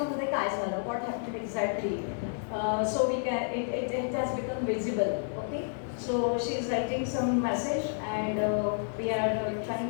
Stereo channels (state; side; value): silent; right; digital silence